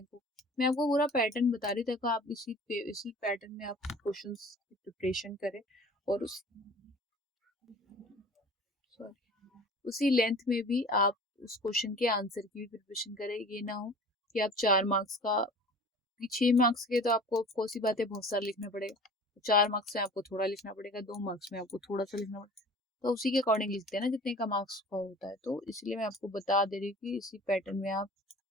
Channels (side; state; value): both; normal; correlation 0.44